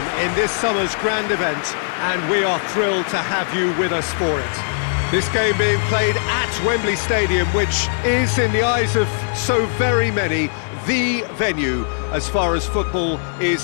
in this summer's grand event, and we are thrilled to have you with us for it. This game being played at Wembley Stadium, which is, in the eyes of so very many, the venue as far as football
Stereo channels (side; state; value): right; silent; digital silence